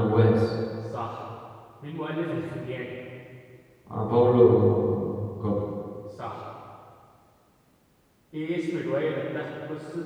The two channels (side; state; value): both; identical; correlation 1.00